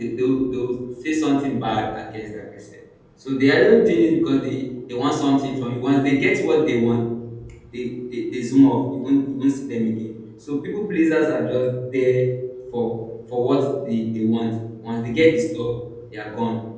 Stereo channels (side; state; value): both; identical; correlation 1.00